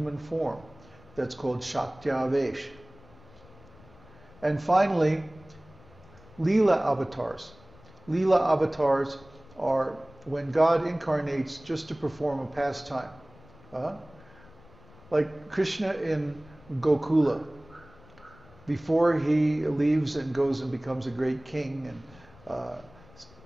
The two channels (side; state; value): left; noise; rumble, 24 dB below the sound